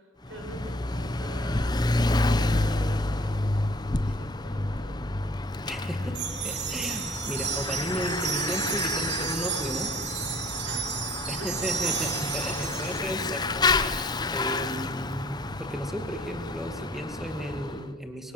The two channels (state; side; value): normal; both; correlation 0.52